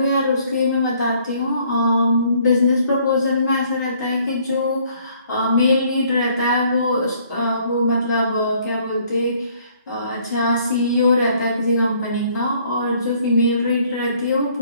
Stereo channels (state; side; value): inverted; both; correlation -0.62